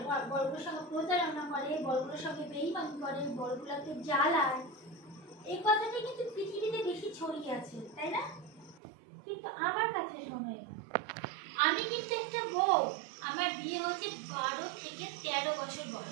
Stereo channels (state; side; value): drops out; left; at 8.8 s